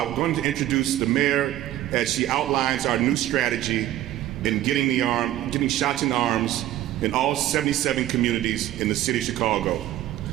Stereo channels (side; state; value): left; quieter; 13.7 dB